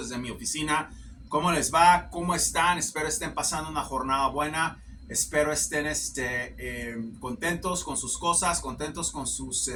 mi oficina. ¿Cómo les va? ¿Cómo están? Espero estén pasando una jornada buena. Espero estén contentos con sus cosas, contentos con sus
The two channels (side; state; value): both; identical; correlation 1.00